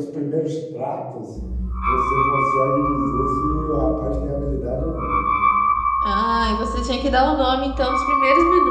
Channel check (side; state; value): both; identical; correlation 1.00